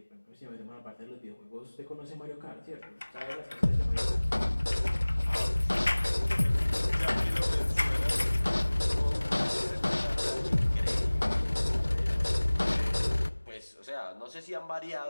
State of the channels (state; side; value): inverted; both; correlation -1.00